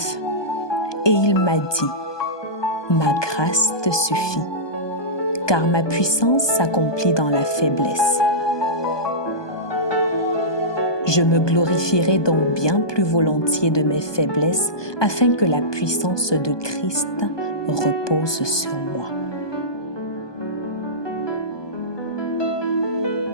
Et il m'a dit, « Ma grâce te suffit, car ma puissance s'accomplit dans la faiblesse. » Je me glorifierai donc bien plus volontiers de mes faiblesses, afin que la puissance de Christ repose sur moi.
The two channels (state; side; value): late; right; 1.2 ms